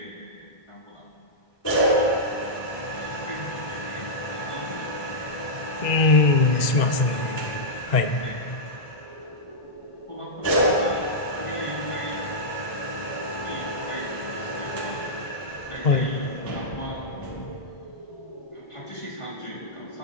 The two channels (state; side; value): late; right; 1.9 ms